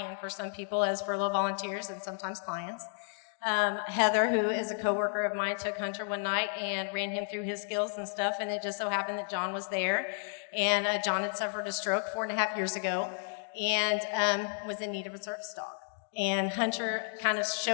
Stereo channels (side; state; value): right; silent; 56 dB below the other